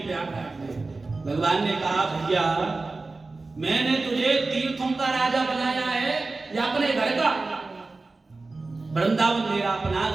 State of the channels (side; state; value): left; quieter; 3.6 dB